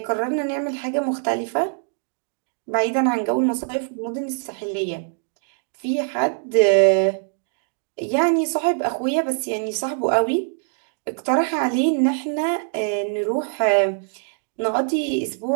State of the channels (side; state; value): left; silent; digital silence